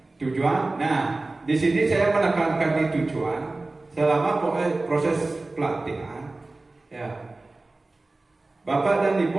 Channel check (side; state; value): left; quieter; 3.1 dB